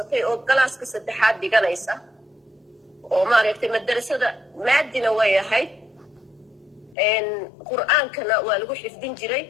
oo galaaska saddexaad dhiganaysa oo maaragtay madrasada maadina way ahayd qur'aankana waa lagu xifdin jiray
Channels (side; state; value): right; drops out; at 7.0 s